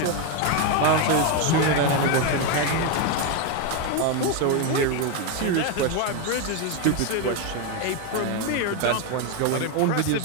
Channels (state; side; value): different; both; correlation 0.02